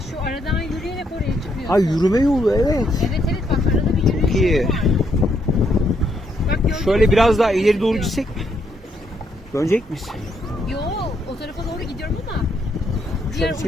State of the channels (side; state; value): both; normal; correlation 0.74